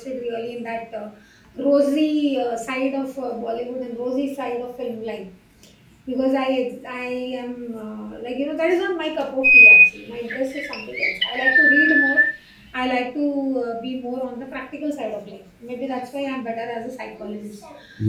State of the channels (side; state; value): both; identical; correlation 1.00